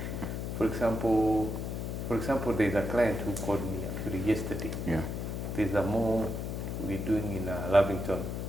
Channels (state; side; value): noise; left; hum, 4 dB below the sound